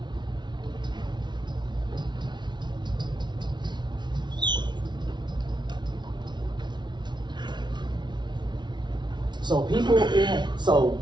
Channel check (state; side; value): late; left; 0.21 ms